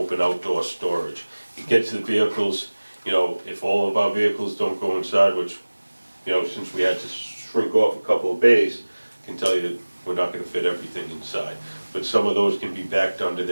outdoor storage. It gets the vehicles, you know, if all of our vehicles don't go inside, which, you know, since we had to shrink off a couple of bays, I can tell you we're not gonna fit everything inside. But some of those can be backed under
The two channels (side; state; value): both; inverted; correlation -1.00